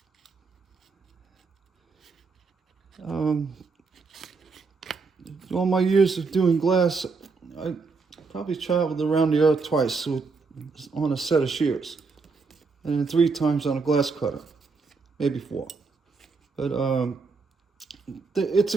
All my years of doing glass, I probably traveled around the earth twice on a set of shears, and then 3 times on a glass cutter, maybe 4. But it's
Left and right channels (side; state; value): left; quieter; 4.5 dB